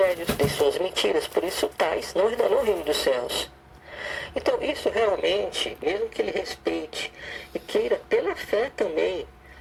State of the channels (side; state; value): both; identical; correlation 1.00